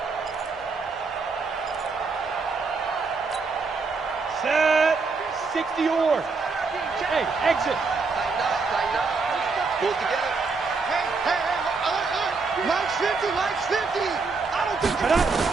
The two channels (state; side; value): quieter; left; 4.4 dB